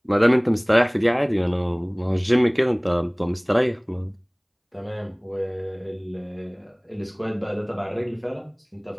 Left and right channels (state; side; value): identical; both; correlation 1.00